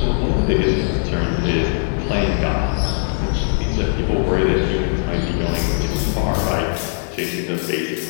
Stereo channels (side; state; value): right; silent; digital silence